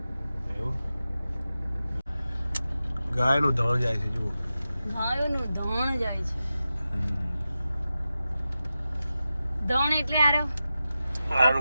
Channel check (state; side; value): inverted; both; correlation -0.93